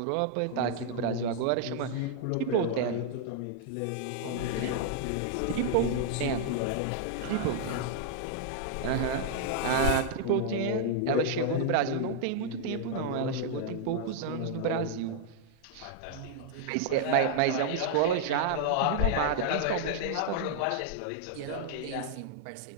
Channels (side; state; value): both; different; correlation -0.01